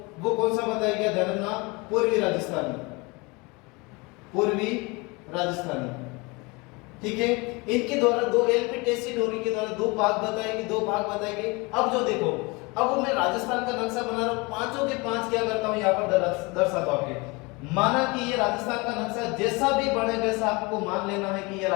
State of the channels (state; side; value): quieter; right; 26.6 dB